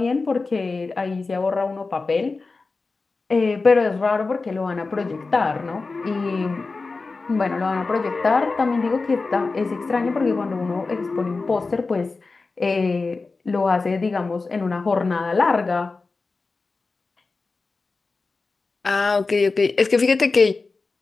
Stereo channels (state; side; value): quieter; right; 3.9 dB